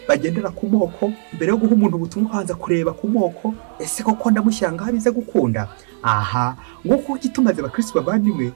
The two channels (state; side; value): silent; left; 60 dB below the other